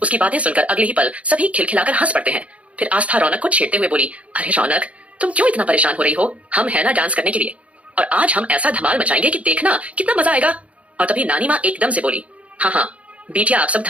बातें सुनकर अगले ही पल सभी खिलखिलाकर हंस पड़ते हैं। फिर आस्था रौनक को छेड़ते हुए बोली, अरे रौनक तुम क्यों इतना परेशान हो रही हो? हम है ना डांस करने के लिए और आज हम ऐसा धमाल मचाएंगे कि देखना कितना मजा आएगा। और तभी नानी माँ एकदम से बोली, हाँ हाँ बेटिया आप सब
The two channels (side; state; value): left; late; 0.064 ms